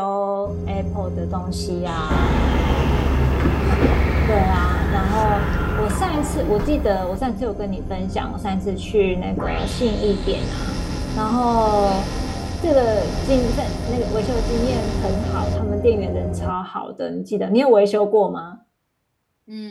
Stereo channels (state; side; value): identical; both; correlation 1.00